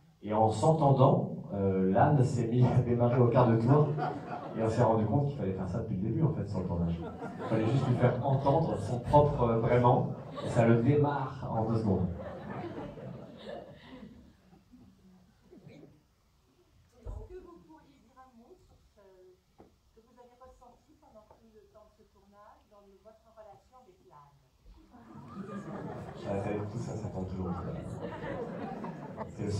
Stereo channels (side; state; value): both; identical; correlation 1.00